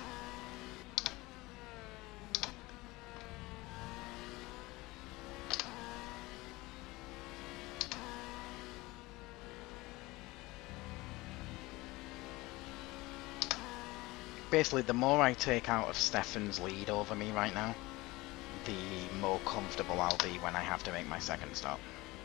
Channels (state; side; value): quieter; right; 21.1 dB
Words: Basically, the more I take out of Stefan's lead over me right now, the more comfortable I'll be when I have to make my second stop.